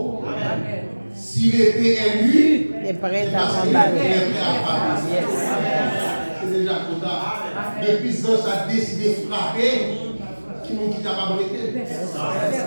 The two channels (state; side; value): inverted; both; correlation -1.00